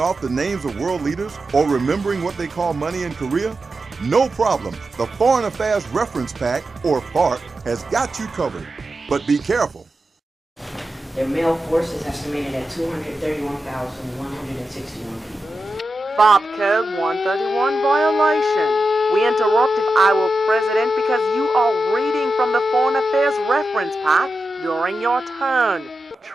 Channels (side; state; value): both; normal; correlation 0.90